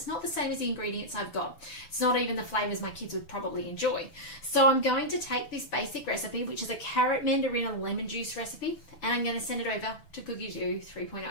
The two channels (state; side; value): late; right; 6.0 ms